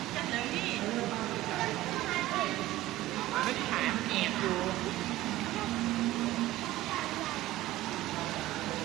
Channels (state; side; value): quieter; left; 16.2 dB